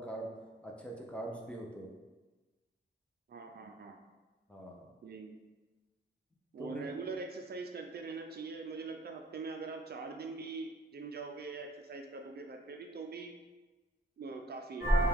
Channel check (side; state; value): both; normal; correlation 0.57